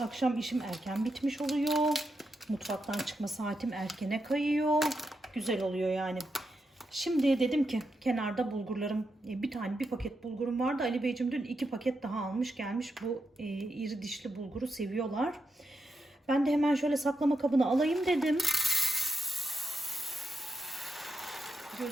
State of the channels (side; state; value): both; normal; correlation 0.85